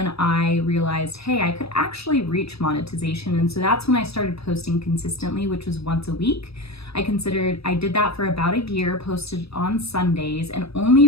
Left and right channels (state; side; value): late; right; 0.78 ms